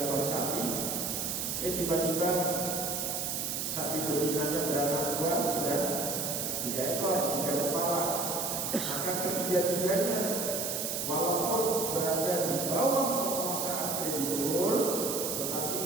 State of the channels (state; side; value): noise; right; hiss, 2 dB below the sound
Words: ekor sapi, tiba-tiba sapi betinanya beranak dua, sudah 3 ekor, 3 kepala, maka ketiga-tiganya walaupun berada di bawah penguasaan kreditur,